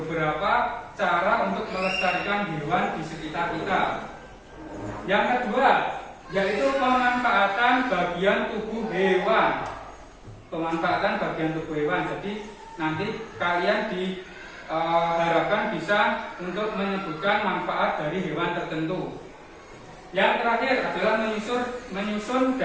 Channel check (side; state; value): both; identical; correlation 1.00